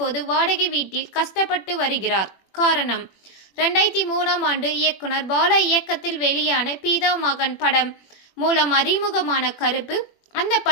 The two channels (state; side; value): late; right; 21 ms